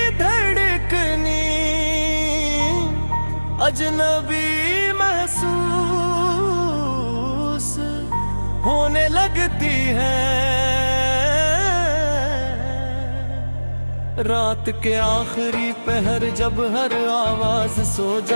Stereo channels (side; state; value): both; inverted; correlation -1.00